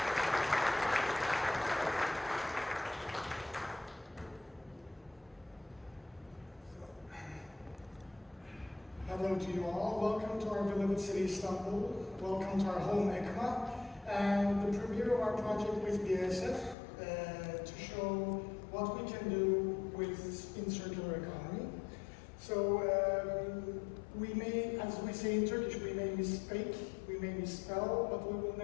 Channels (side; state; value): right; drops out; at 16.8 s